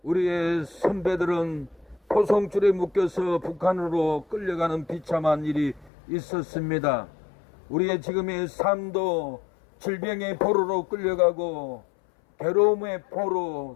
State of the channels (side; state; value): right; drops out; at 5.9 s